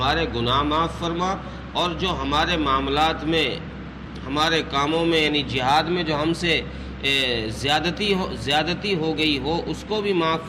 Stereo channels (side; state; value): both; identical; correlation 1.00